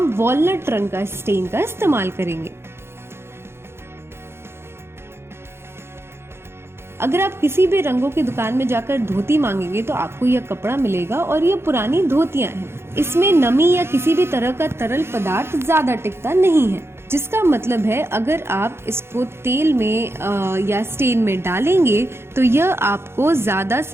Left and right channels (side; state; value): left; late; 0.12 ms